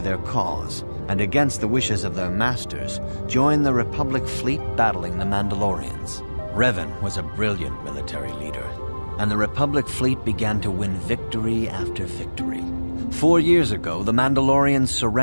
cause, and against the wishes of their masters, joined the Republic fleet battling the Mandalorians. Revan was a brilliant military leader, and the Republic fleet began to win victory after victory. 4 years ago, the Mandalorians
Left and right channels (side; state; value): both; inverted; correlation -1.00